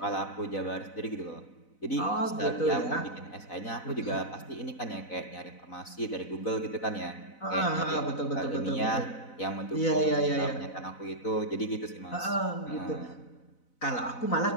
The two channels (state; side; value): late; right; 4.0 ms